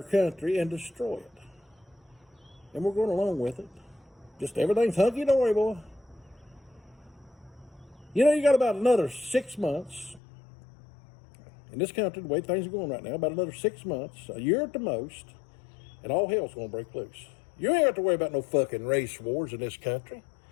country and destroy it. And we're going along with it. Just everything's hunky-dory, boy. You know, you got about another 6 months in this country, the way things are going right now, about another 6 months, a year at the most, and all hell's going to break loose. You ain't got to worry about no fucking race wars in this country.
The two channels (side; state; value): right; drops out; at 10.2 s